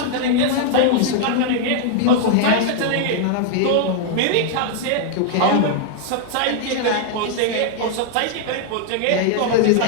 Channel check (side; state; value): both; different; correlation 0.00